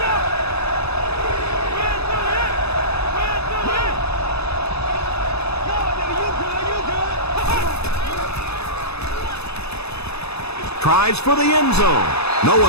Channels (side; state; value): right; late; 0.79 ms